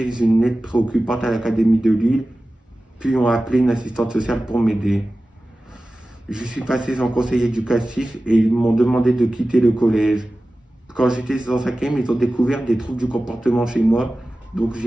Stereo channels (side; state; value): both; normal; correlation 0.96